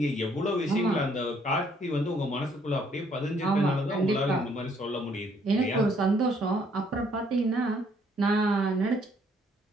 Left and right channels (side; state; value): both; normal; correlation 0.66